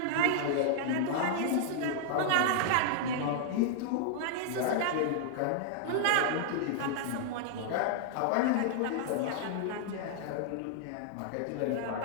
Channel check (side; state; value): both; different; correlation -0.01